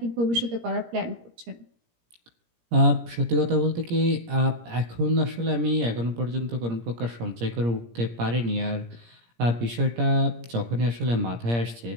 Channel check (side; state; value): left; late; 17 ms